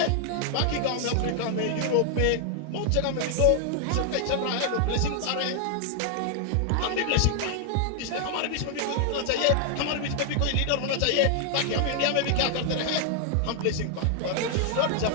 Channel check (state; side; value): different; both; correlation 0.00